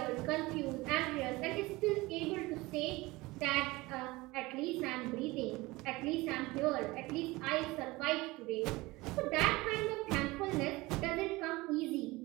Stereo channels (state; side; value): quieter; left; 21.3 dB